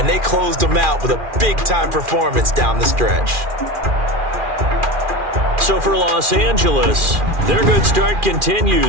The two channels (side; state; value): left; late; 2.4 ms